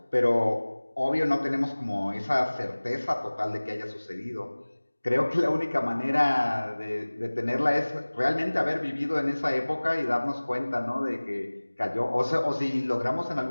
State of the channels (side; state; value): both; inverted; correlation -1.00